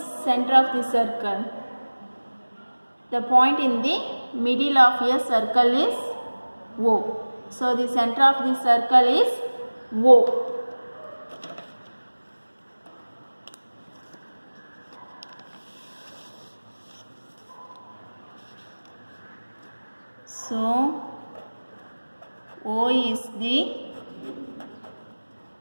center of the circle? The point in the middle of a circle is O. So the center of the circle is O. So O is the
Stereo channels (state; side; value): inverted; both; correlation -1.00